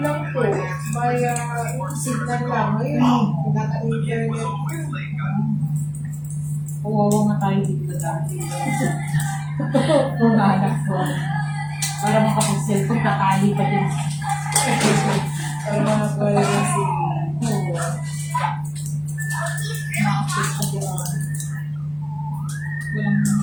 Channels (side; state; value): both; identical; correlation 1.00